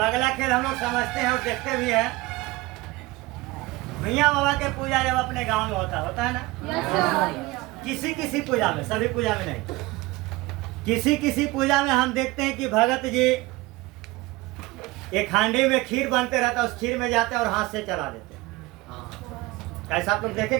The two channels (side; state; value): left; quieter; 20.8 dB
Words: अगला खेल हम लोग समझते हैं और देखते भी हैं। मियाँ बाबा के पूजा जब अपने गांव में होता है ना, किसी किसी पूजा में, सभी पूजा में नहीं, किसी किसी पूजा में हम देखते हैं कि भगत जी एक हांडी में खीर बनते रहता, उस खीर में जाते और हाथ से चला देते। ऐसा आप लोग देखे